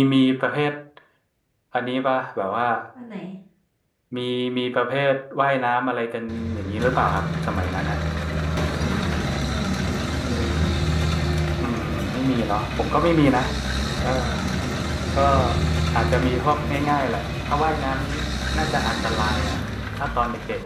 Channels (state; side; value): identical; both; correlation 1.00